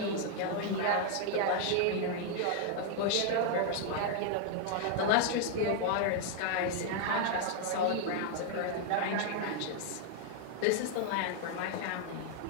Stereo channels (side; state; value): both; different; correlation 0.00